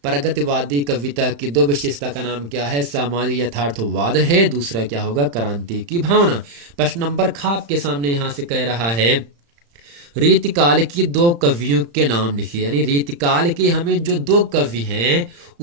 प्रगतिवादी कविता की 2 विशेषता का नाम क्या है, सामाजिक यथार्थवाद है, दूसरा क्या होगा क्रांति की भावना। प्रश्न नंबर खा आपके सामने यहां से कह रहा है, रीतिकाल की 2 कवियों के नाम लिखिए। यानी रीतिकाल के हमें जो 2 कवि हैं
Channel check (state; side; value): late; left; 35 ms